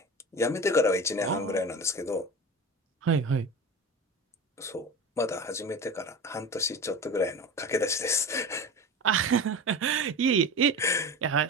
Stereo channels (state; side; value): normal; both; correlation 0.30